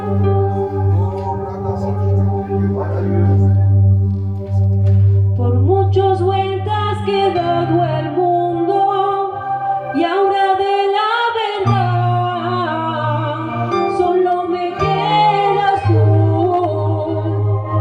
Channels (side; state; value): both; identical; correlation 1.00